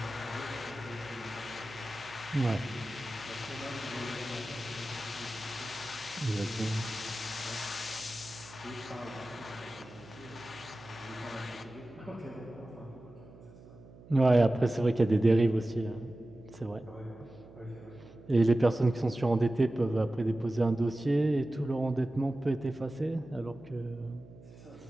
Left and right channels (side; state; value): right; noise; hum, 20 dB below the sound